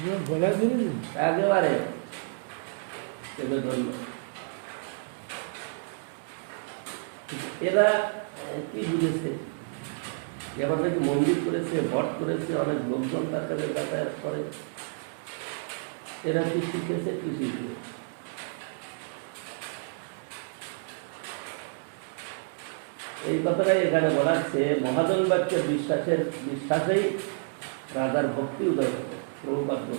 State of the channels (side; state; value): left; silent; digital silence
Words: একেবারে সেগুলো ধরল। এরা কি বুঝেছে? এবার নাকি মন্দির করেছে, ভট করেছে, অনেক লোকজন তার কাছে যাতায়াত করে। এরা কি শিখেছে, কি শিখবে? এই কথাটাই এখানে বলাচ্ছে, মহাজন বাক্যে বিশ্বাসেই রাজার ভক্তি উদয় হবে। প্রভুপাদ